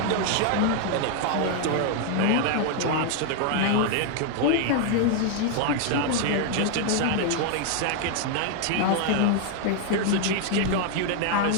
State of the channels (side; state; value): both; different; correlation 0.00